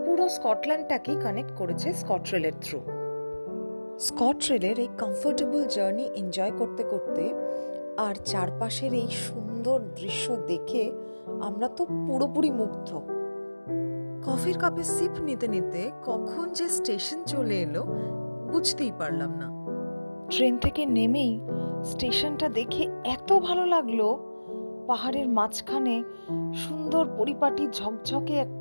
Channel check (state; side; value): inverted; both; correlation -1.00